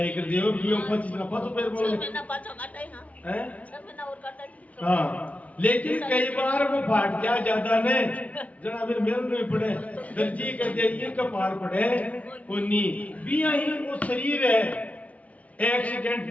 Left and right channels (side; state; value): right; late; 0.068 ms